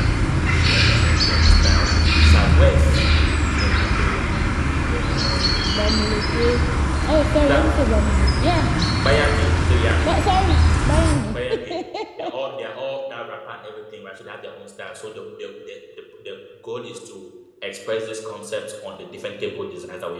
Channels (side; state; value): both; identical; correlation 1.00